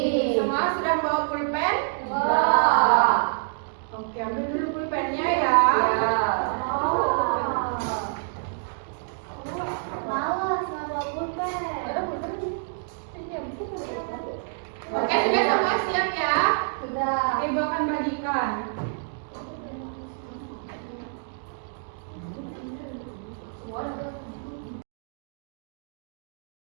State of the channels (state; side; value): silent; left; digital silence